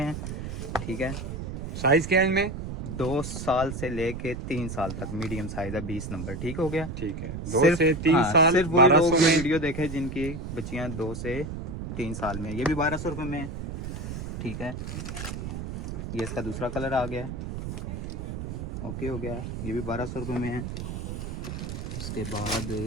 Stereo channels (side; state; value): right; noise; rumble, 6 dB below the sound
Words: है। ठीक है, साइज क्या है इनमें? 2 साल से लेके 3 साल तक मीडियम साइज है, 20 नंबर। ठीक हो गया। ठीक है, 2 से 3 साल सिर्फ वही लोग 1200 में। वीडियो देखे जिनकी बच्चियाँ 2 से 3 साल में। ये भी 1200 रुपये में है। ठीक है, ये इसका दूसरा कलर आ गया। ओके हो गया, ये भी 1200 रुपये में है। उसके बाद